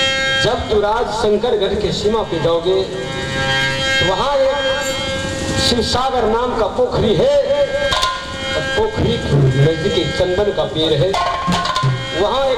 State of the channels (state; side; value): identical; both; correlation 1.00